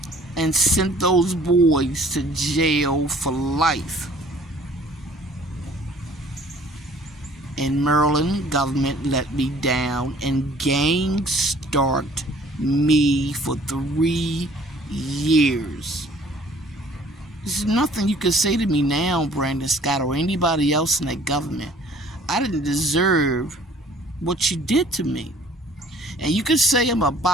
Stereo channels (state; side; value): normal; both; correlation 0.54